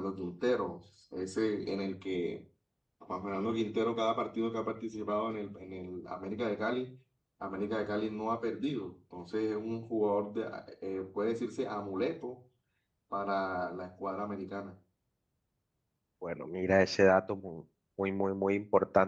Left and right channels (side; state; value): both; identical; correlation 1.00